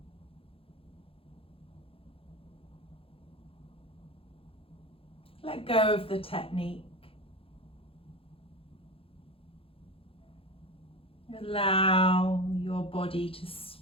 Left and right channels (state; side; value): late; right; 0.27 ms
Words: Let go of the technique. Allow your body to